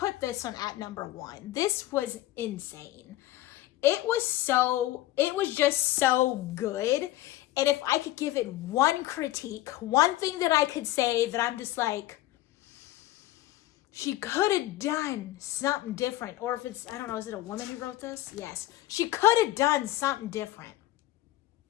this one at number 1. This was insane. It was just so good. And if I could give it one critique, one thing that I could say that I'm just like, she could have done something different. Or if it's, I don't know, is it a woman who wrote this? Yes. She could have done something different.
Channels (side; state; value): right; quieter; 15.8 dB